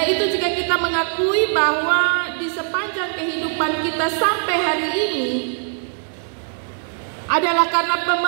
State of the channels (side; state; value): left; silent; 63 dB below the other